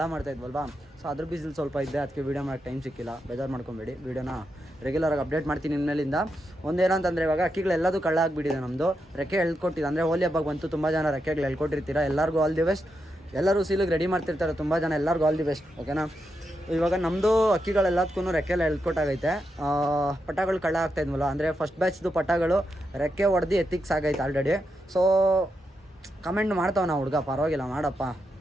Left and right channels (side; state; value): both; normal; correlation 0.85